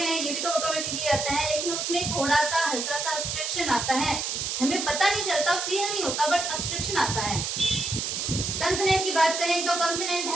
हैं ये भी तो ऑटोमेटिकली आता है, लेकिन उसमें थोड़ा सा हल्का सा ऑब्स्ट्रक्शन आता है, हमें पता नहीं चलता, फील नहीं होता, बट ऑब्स्ट्रक्शन आता है। कंसोनेंट की बात करें तो कंसोनेंट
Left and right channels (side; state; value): right; noise; hiss, 2 dB below the sound